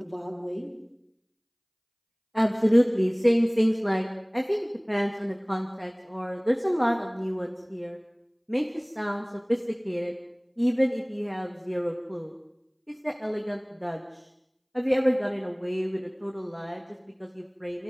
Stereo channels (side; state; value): both; identical; correlation 1.00